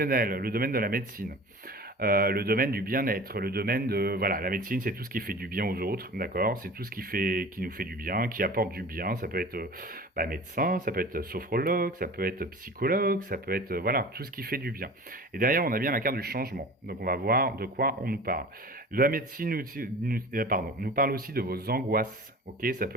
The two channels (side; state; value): both; normal; correlation 0.39